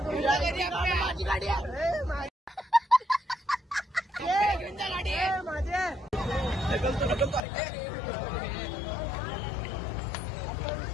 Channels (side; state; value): right; drops out; at 7.4 s